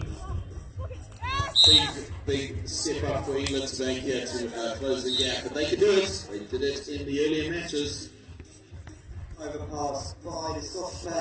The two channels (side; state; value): both; identical; correlation 1.00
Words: Big step up for England to make here to close the gap, but they could do it. They did it in the earlier matches. Overpass by the Scottish